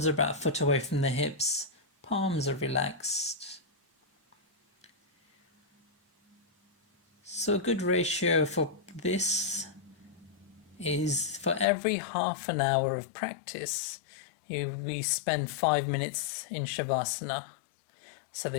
are about a foot away from the hips. Palms are relaxed. So a good ratio for this is for every half an hour of practice, we spend 5 minutes in Shavasana. So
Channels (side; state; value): right; drops out; at 11.7 s